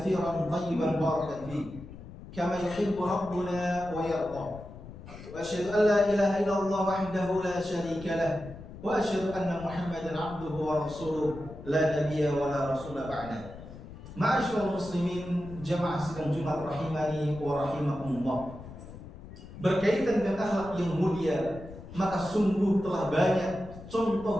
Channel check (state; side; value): noise; left; rumble, 15 dB below the sound